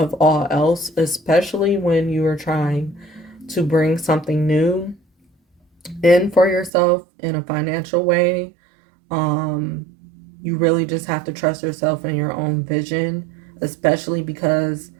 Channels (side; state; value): left; drops out; at 6.7 s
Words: all else, especially when you are trying to bring something new in for yourself in a financial way. Um, you really just have to trust yourself and your own vision, especially because